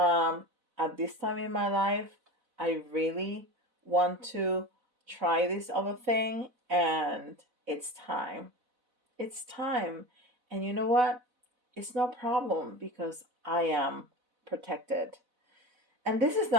at this time in my life, I really want to try this other thing, and it's time. It's time. And you know what? It's no problem because I am protected. And this is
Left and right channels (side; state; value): left; late; 4.0 ms